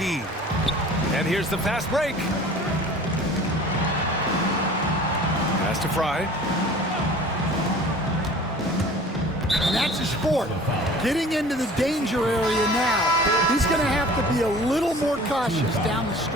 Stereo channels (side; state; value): both; normal; correlation 0.45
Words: And here's the fast break. Pass to Fry. And that's his fourth. Getting into the danger area now. He's going to have to be a little more cautious down the